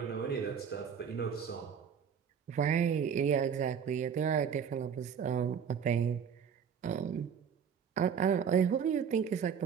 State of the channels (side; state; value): left; quieter; 7.4 dB